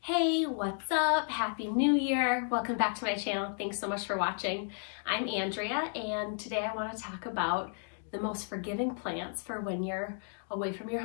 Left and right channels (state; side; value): silent; right; 56 dB below the other